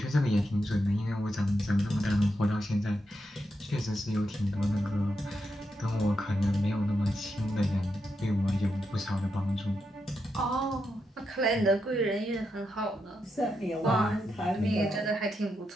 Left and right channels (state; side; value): normal; both; correlation 0.84